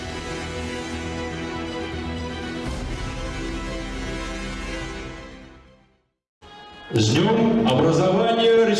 С днем образования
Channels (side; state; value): both; identical; correlation 1.00